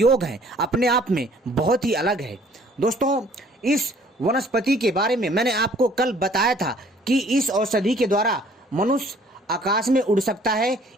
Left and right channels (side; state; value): both; normal; correlation 0.57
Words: हैं अपने आप में बहुत ही अलग है। दोस्तों इस वनस्पति के बारे में मैंने आपको कल बताया था कि इस औषधि के द्वारा मनुष्य आकाश में उड़ सकता है